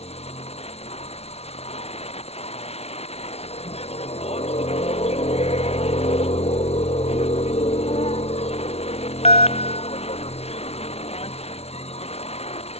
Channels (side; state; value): right; late; 0.30 ms